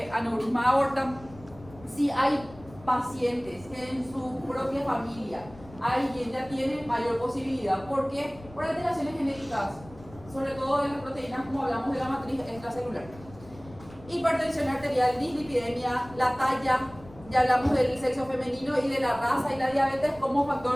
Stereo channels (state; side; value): noise; left; rumble, 20 dB below the sound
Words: aneurisma de aorta. Si hay pacientes que en su propia familia alguien ya tiene mayor posibilidad, ¿por qué? Por alteraciones genéticas, sobre todo de las proteínas, como hablamos de la matriz extracelular. Hipertensión arterial, dislipidemia, la talla, ya hablamos del sexo femenino y de la raza y la diabetes como